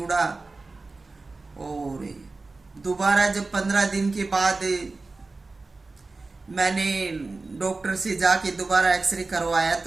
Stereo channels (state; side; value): quieter; left; 3.6 dB